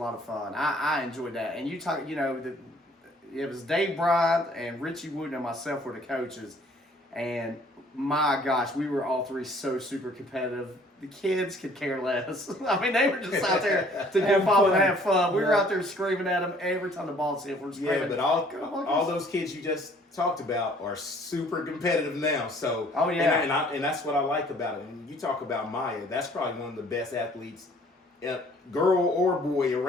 of fun. I enjoyed that. And you talk, it was Dave Bryant and Richie Wooten and myself were the coaches. And my gosh, we were all three so super competitive. The kids could care less. I mean, they were just out there to Have have fun and fun. have fun. We were Yeah. out there screaming at them every time the ball's hit. We're screaming. Yeah, but all those kids you just talked about are super competitive now. So Oh, yeah. and that's what I like about it. And you talk about Maya, that's probably one of the best athletes, girl or boy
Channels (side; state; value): both; normal; correlation 0.57